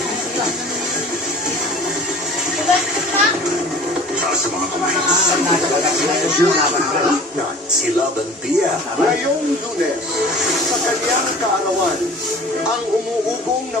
Sa mga kamay, si Laban Dia. Ngayong Lunes, sa kanyang kaarawan, ang umuugong na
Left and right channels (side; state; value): both; normal; correlation 0.44